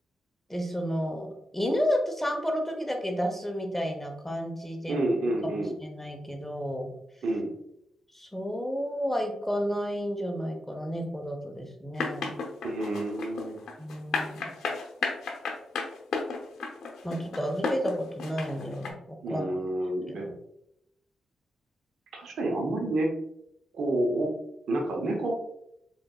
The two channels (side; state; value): both; normal; correlation 0.86